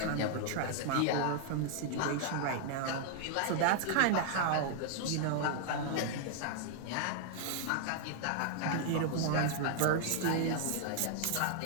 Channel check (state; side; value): different; both; correlation -0.01